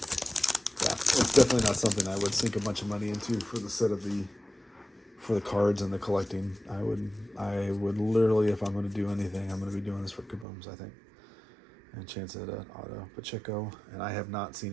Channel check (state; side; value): drops out; left; at 10.5 s